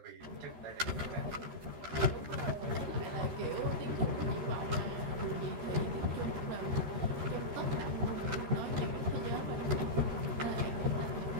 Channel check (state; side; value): late; left; 13 ms